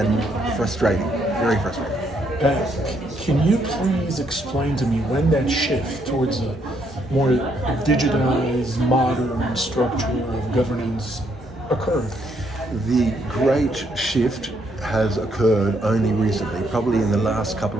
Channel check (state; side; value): normal; both; correlation 0.73